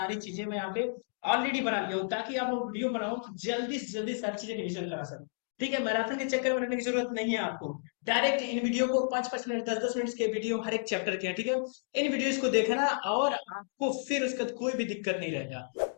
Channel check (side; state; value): right; silent; digital silence